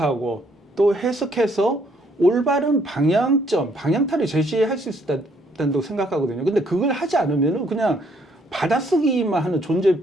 또 해석해서 올바른 방향타를 제시할 수 있다고 생각하거든요. 근데 그걸 하지 않으면은 그냥 받아쓰기만 하는 존재일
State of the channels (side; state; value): both; normal; correlation 0.67